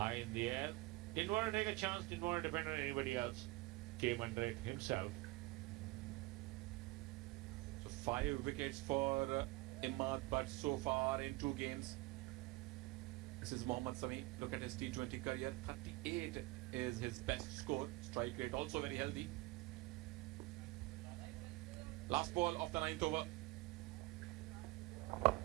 in the air. Didn't want to take a chance, didn't want to depend on anybody else. Came under it himself. So 5 wickets for Imad Butt so far in 2 games. This is Mohammad Sami. Look at his T20 career. 38 is his best score. Strike rate also very healthy. Last ball of the 9th over.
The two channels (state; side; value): quieter; left; 21.4 dB